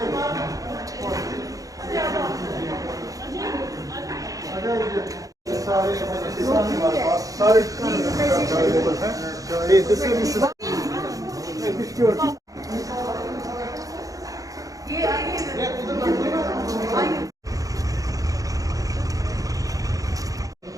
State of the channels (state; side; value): late; left; 0.17 ms